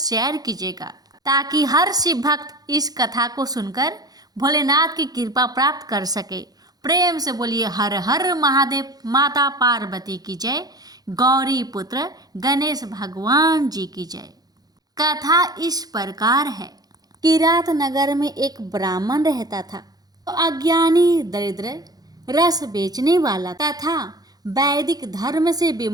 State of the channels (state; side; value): late; left; 0.19 ms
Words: कीजिएगा, ताकि हर शिव भक्त इस कथा को सुनकर भोलेनाथ की कृपा प्राप्त कर सके। प्रेम से बोलिए हर हर महादेव, माता पार्वती की जय, गौरी पुत्र गणेश भगवान जी की जय। कथा इस प्रकार है। किरात नगर में एक ब्राह्मण रहता था। अज्ञानी, दरिद्र, रस बेचने वाला तथा वैदिक धर्म से